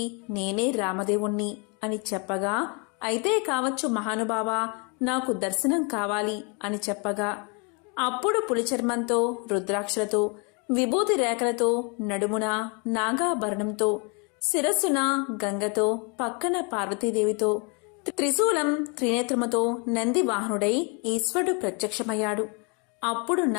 నేనే రామదేవుణ్ణి అని చెప్పగా, అయితే కావచ్చు మహానుభావా, నాకు దర్శనం కావాలి అని చెప్పగా, అప్పుడు పులిచర్మంతో, రుద్రాక్షలతో, విభూతి రేఖలతో, నడుమున నాగాభరణంతో, శిరస్సున గంగతో, పక్కన పార్వతీదేవితో, త్రిశూలం త్రినేత్రముతో నంది వాహనుడై ఈశ్వరుడు ప్రత్యక్షమయ్యాడు. అప్పుడు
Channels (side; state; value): right; quieter; 33.5 dB